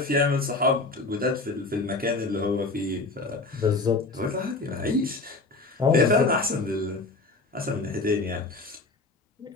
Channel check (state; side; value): quieter; right; 3.4 dB